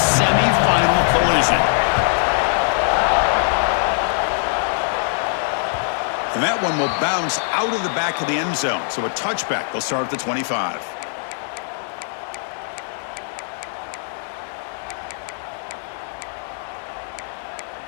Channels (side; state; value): right; silent; digital silence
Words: collision. And that one will bounce out of the back of the end zone. So a touchback. They'll start at the 25.